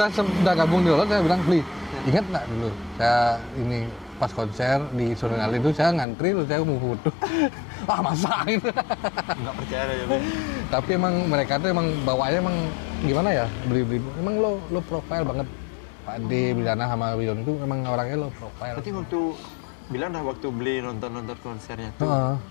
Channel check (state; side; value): drops out; right; at 6.1 s